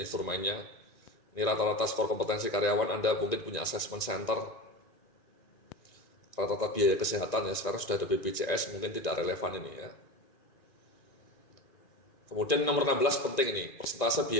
Ini rata-rata skor kompetensi karyawan, Anda mungkin punya assessment center. rata-rata biaya kesehatan ya, sekarang sudah ada BPJS, mungkin tidak relevan ini ya. Kemudian nomor 16 penting ini, persentase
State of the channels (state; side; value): late; right; 1.9 ms